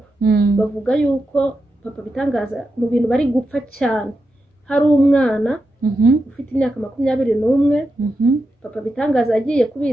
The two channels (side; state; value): both; normal; correlation 0.88